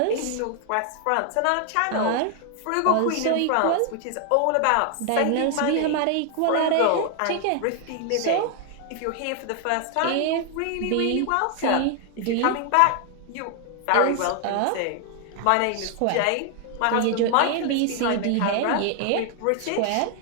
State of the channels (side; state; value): both; different; correlation 0.00